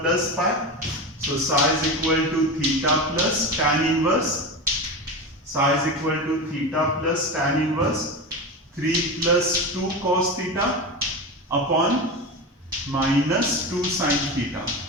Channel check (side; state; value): both; normal; correlation 0.23